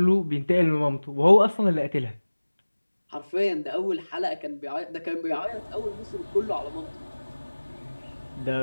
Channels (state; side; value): inverted; both; correlation -1.00